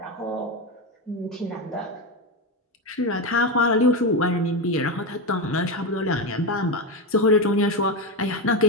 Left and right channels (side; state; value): both; normal; correlation 0.13